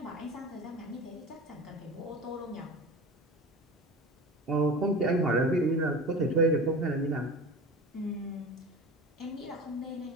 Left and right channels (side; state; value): both; normal; correlation 0.33